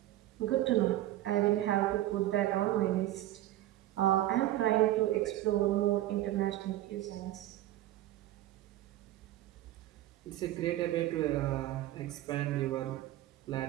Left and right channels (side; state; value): left; quieter; 14.8 dB